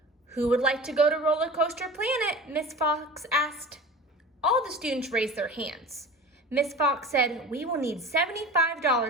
"Who would like to go to Roller Coaster Planet?" Miss Fox asked. All the students raised their hands. Miss Fox said, "We will need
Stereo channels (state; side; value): normal; both; correlation 0.37